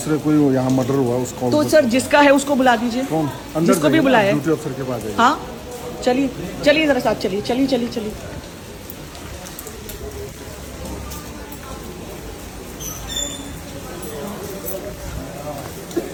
कोई यहाँ मर्डर हुआ उसको तो सर जिसका है उसको बुला दीजिए। कौन? अंदर जिसको भी बुलाया। ड्यूटी अफसर के पास। हाँ चलिए जरा साथ चलिए।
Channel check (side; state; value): both; identical; correlation 1.00